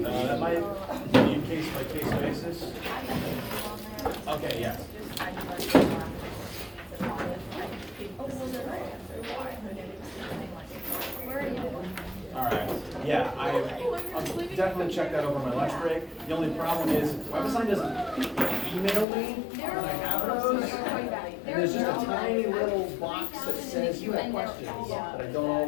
That might be case by case basis. Okay, yeah. All right. Yeah, I'll definitely check that over my lunch break. The only problem is WebAssign doesn't email me when I have those. And there's just a tiny little box that says you have questions, but I don't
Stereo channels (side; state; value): right; drops out; at 19.1 s